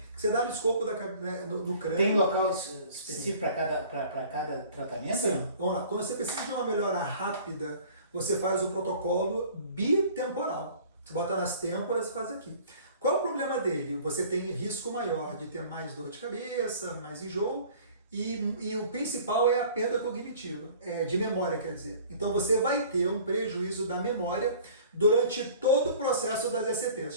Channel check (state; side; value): inverted; both; correlation -0.48